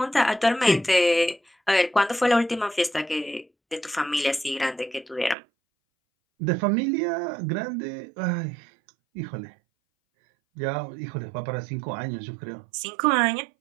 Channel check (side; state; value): left; drops out; at 5.4 s